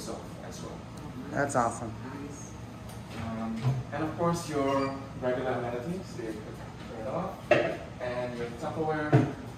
off as well. That's awesome. And of course your regular amenities, so you can turn it off, and your Tupperware.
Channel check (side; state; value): both; identical; correlation 1.00